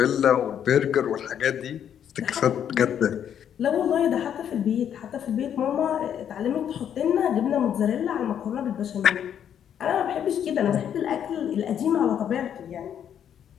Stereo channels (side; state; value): right; quieter; 9.2 dB